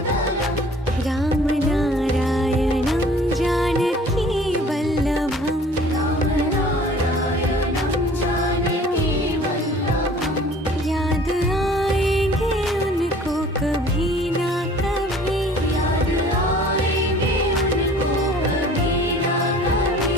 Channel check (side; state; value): both; normal; correlation 0.50